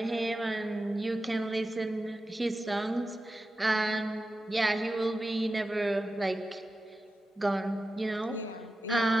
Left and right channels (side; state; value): both; normal; correlation 0.92